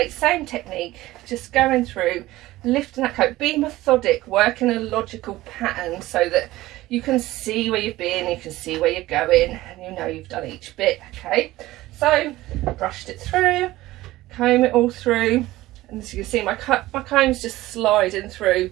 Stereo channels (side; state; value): left; quieter; 17.2 dB